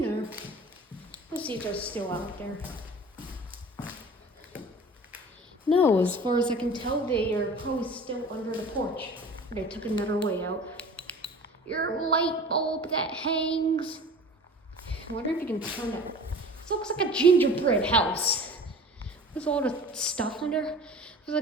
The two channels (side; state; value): both; normal; correlation 0.42